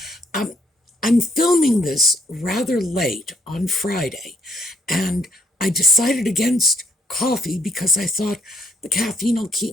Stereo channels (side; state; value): both; normal; correlation 0.69